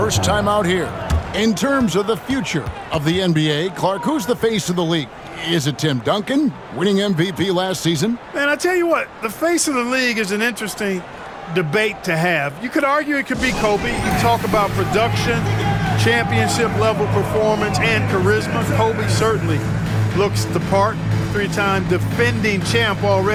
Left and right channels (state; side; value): identical; both; correlation 1.00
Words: time out here. In terms of the future of the NBA, Clark, who's the face of the league? Is it Tim Duncan, winning MVP last season? Man, I tell you what, the face of the league is an interesting debate to have. You could argue it could be Kobe. You talk about production, championship-level performance, and charisma. Kobe certainly looks the part. 3-time defending champ